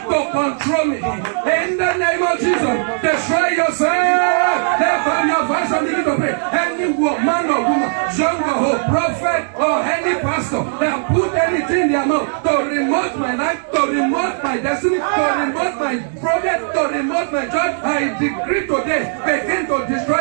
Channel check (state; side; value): silent; left; digital silence